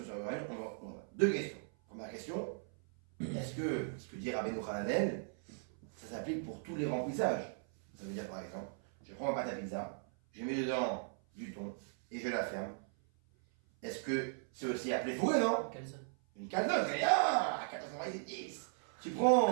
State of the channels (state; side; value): silent; left; 53 dB below the other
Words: sur le Rabbeinu. Deux questions. Première question. Est-ce que ce que dit Rabbeinu Hananel, ça s'applique pour tous les remplissages? Ça veut dire par exemple, je prends ma pâte à pizza, je mets dedans du thon et je la ferme. Est-ce que c'est aussi appelé fourré, non? Calzone. Une calzone, rien, à 490. Tu